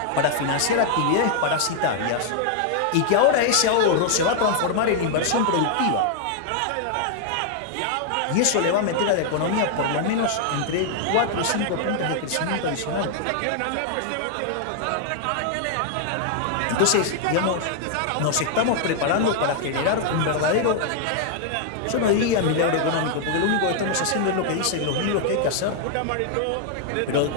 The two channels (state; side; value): different; both; correlation 0.00